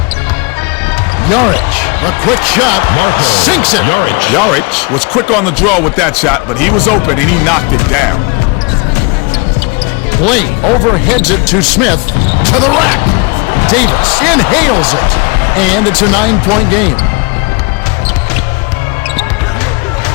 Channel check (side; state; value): right; quieter; 30.1 dB